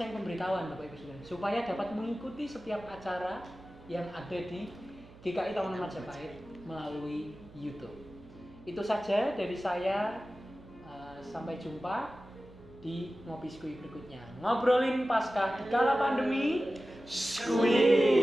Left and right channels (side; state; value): right; noise; hum, 21 dB below the sound